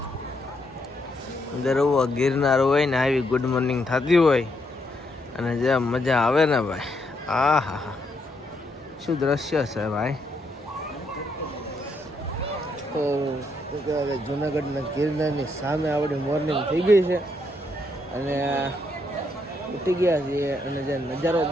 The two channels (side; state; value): both; normal; correlation 0.76